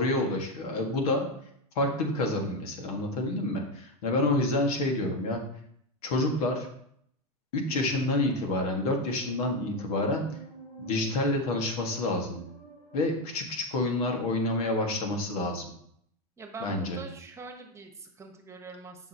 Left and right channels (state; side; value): normal; both; correlation 0.10